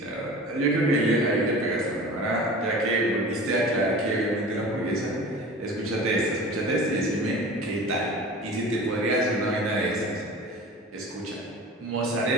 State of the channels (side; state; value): both; normal; correlation 0.38